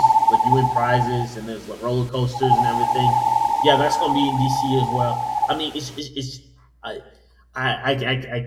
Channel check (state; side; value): identical; both; correlation 1.00